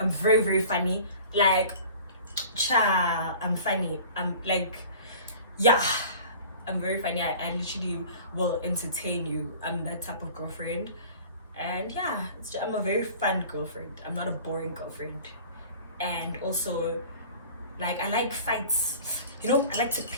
very, very funny. Like, I'm funny. I'm like, yeah, I'm very funny. I literally will entertain you. I'm that type of girlfriend. And yeah, I'm a very fun girlfriend. I'm not a boring girlfriend. And also, like, I like fights. You know, I like to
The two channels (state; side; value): inverted; both; correlation -0.43